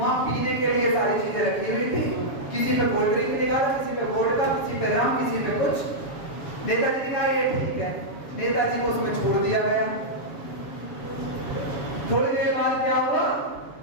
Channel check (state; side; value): late; right; 7.2 ms